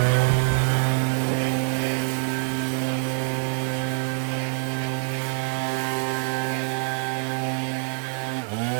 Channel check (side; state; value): left; silent; digital silence